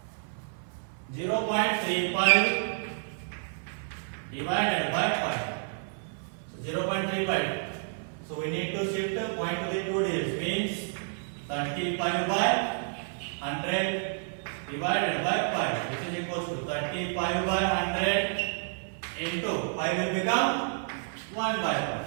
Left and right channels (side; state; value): left; silent; 57 dB below the other